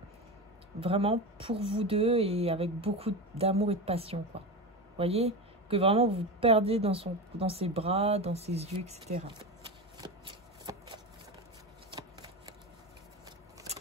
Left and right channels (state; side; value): normal; both; correlation 0.22